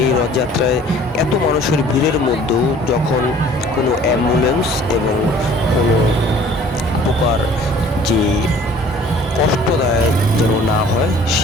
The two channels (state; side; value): normal; both; correlation 0.52